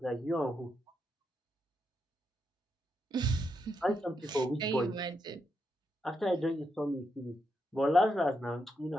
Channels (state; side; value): normal; both; correlation 0.82